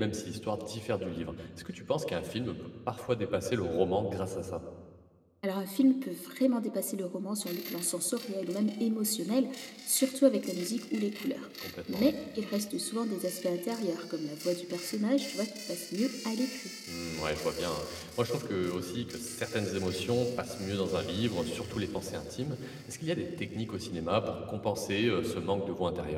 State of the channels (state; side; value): identical; both; correlation 1.00